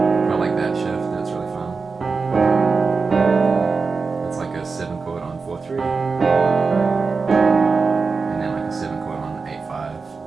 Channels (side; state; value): left; quieter; 4.6 dB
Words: Quite like that shift, that's really fun. It's like a 7 chord on 4/3. And then like a 7 chord on 8/5.